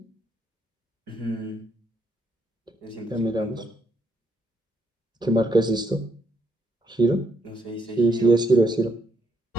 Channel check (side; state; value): both; normal; correlation 0.75